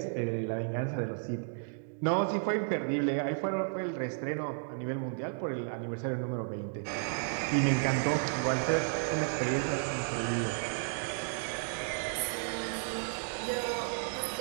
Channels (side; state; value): left; silent; digital silence